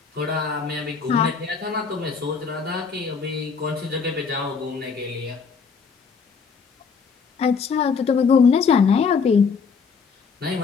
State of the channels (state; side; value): quieter; right; 5.5 dB